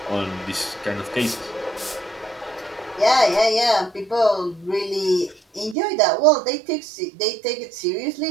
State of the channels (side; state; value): left; drops out; at 5.8 s